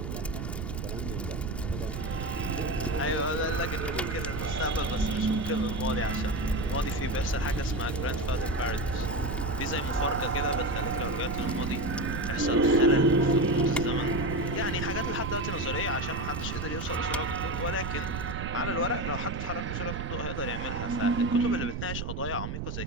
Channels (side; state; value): right; noise; rumble, 4 dB below the sound